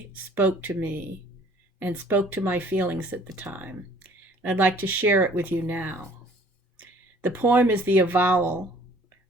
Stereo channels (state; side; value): normal; both; correlation 0.55